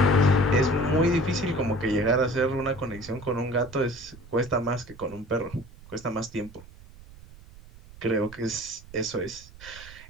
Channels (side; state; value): right; noise; rumble, 20 dB below the sound